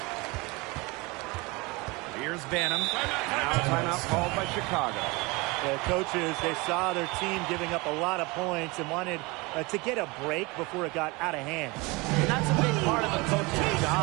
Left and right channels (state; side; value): quieter; left; 25.2 dB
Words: Here's Banham. Now timeout called by Chicago. The coaches, they saw their team giving up a lot of points and wanted to get a break before it got out of hand. And that's a big part of a coach's